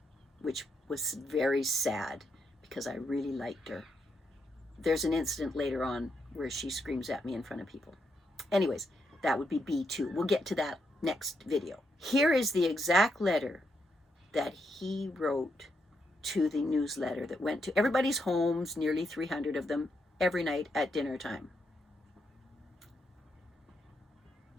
which was very sad because I really liked her. There's an incident later on where she screams at me in front of people. Anyways, that would be B2. We'll get to that next video. Here is the exact letter that he wrote to the newsletter that went to everybody's homes, nearly 300 of them, every night at dinner time.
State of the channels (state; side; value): normal; both; correlation 0.80